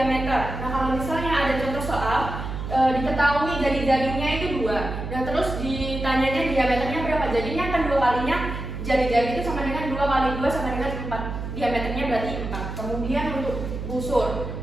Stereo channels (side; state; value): right; noise; hum, 6 dB below the sound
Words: Nah, kalau misalnya ada contoh soal diketahui jari-jarinya itu 2 dan terus ditanyanya diameternya berapa, jadinya kan 2 kalinya jari-jari itu sama dengan 2 kali 2 sama dengan 4, diameternya berarti 4. Kemudian untuk busur